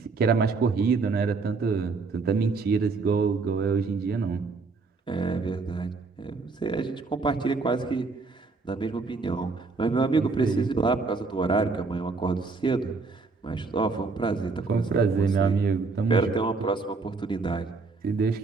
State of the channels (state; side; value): quieter; left; 4.2 dB